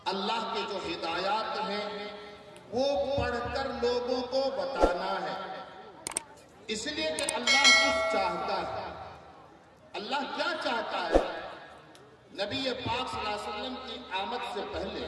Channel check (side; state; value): both; identical; correlation 1.00